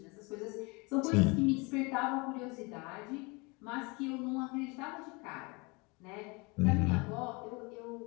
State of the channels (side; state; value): right; quieter; 27.8 dB